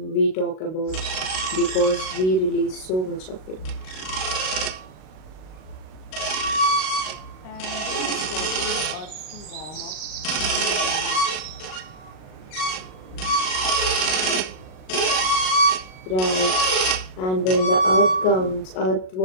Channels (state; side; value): late; right; 37 ms